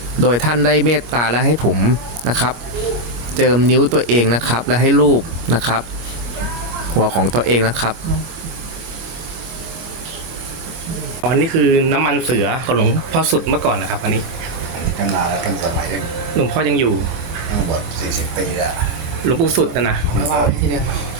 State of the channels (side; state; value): left; late; 25 ms